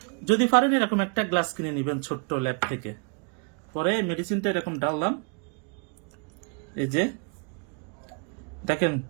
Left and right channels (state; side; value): quieter; left; 39.0 dB